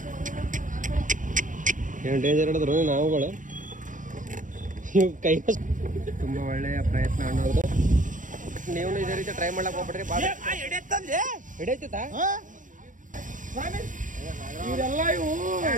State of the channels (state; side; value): late; left; 0.38 ms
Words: ಏನು ಡೇಂಜರ್ ಹಿಡಿದ್ರು ನಾವುಗಳು. ಇವು ಕೈ ತುಂಬ ಒಳ್ಳೆಯ ಪ್ರಯತ್ನ ಅನ್ನೋದು. ನೀವು ಇದೇ ರೀತಿ ಟ್ರೈ ಮಾಡ್ಲಕ್ ಹೋಗ್ಬಿಡ್ರಿ. ಬಾಳ ಹಿಡಿಯತ್ತ ಇವರೆಲ್ಲ ಇವು